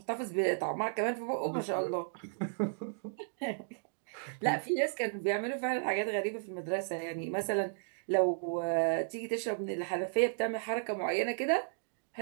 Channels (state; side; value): silent; left; digital silence